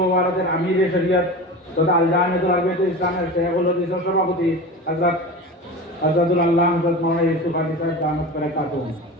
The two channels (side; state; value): both; normal; correlation 0.31